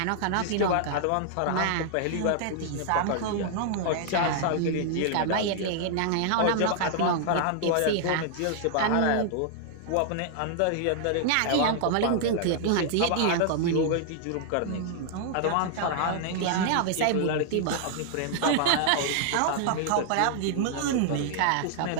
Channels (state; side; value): different; both; correlation 0.00